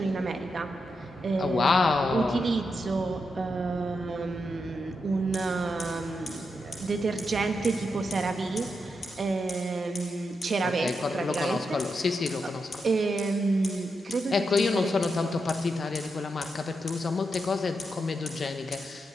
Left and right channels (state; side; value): normal; both; correlation 0.85